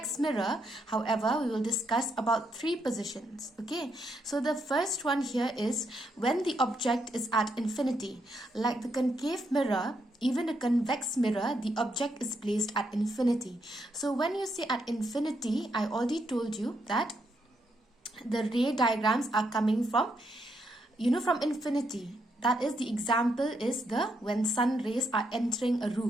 mirror, however, we will discuss about 3 positions. Okay, so the first one here is when the object is at infinity. Like the concave mirror, even a convex mirror, the object is placed at infinity. So when you say at infinity, I already told you that the ray diagrams are coming from, from infinity. That is, the example is when sun rays are entering a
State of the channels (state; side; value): normal; both; correlation 0.78